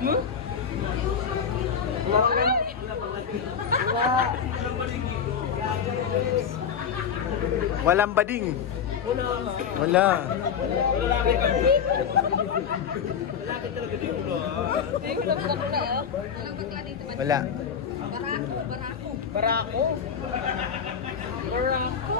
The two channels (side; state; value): right; quieter; 7.2 dB